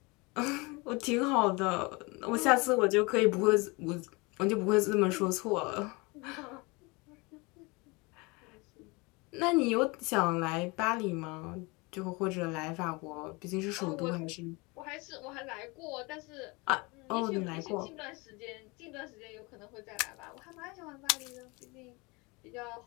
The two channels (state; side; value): quieter; right; 26.7 dB